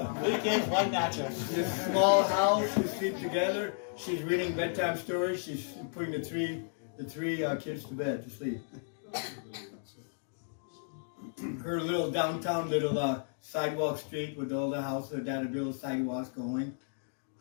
3 kids, 1 mattress. This small house, we sleep together. She's reading bedtime stories. She's putting the three kids to bed to sleep. Her little downtown sidewalk street with all the houses, her dad had little sidewalks going.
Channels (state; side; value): silent; right; digital silence